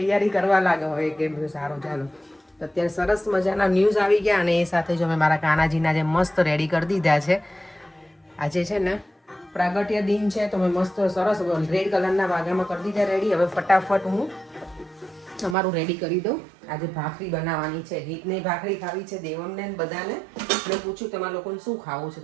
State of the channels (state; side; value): drops out; left; at 15.6 s